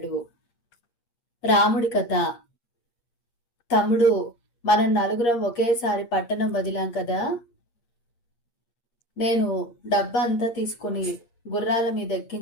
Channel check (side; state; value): right; late; 8.5 ms